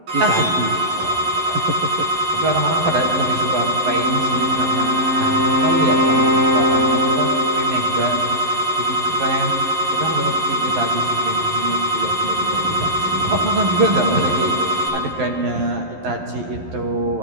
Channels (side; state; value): left; late; 11 ms